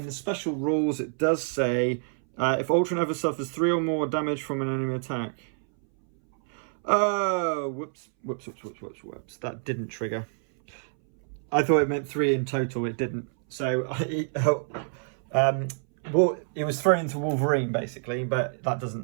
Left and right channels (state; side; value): silent; left; 60 dB below the other